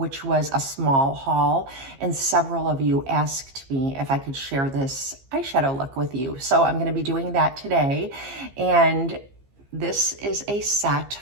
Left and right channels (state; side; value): late; left; 15 ms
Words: was a small haul. And several of you asked me if I could share this eyeshadow look with you. So I'm going to be doing that today. And this is a set